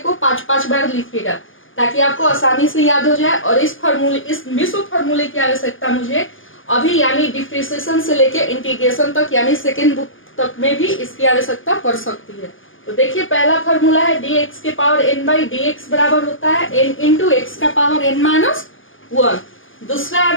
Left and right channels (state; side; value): late; right; 0.58 ms